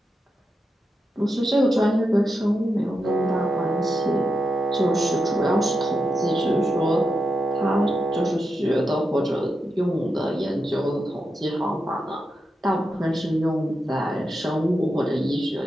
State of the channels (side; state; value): both; normal; correlation 0.87